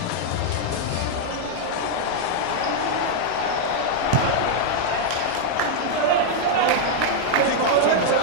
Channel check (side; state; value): both; different; correlation -0.01